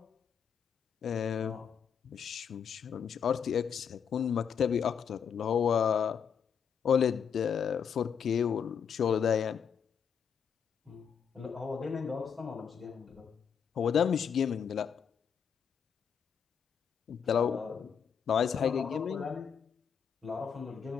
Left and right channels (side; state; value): right; quieter; 7.3 dB